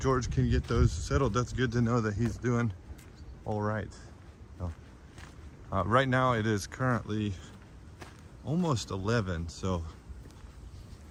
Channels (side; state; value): both; identical; correlation 1.00